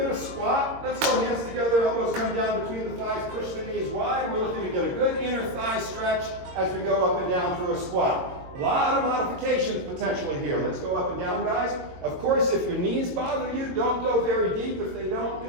to squat. Let's go hands together, elbows come down between the thighs, push the knees wide. We're looking to get a good inner thigh stretch as we go up and down through a squat. A lot of modifications potentially here. Let's go up and down, guys. Of course, if your knees bother you, don't go very deep. If they don't,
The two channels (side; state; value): left; late; 22 ms